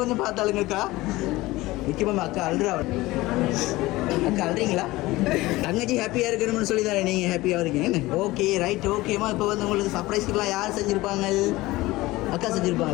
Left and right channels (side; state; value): right; quieter; 19.2 dB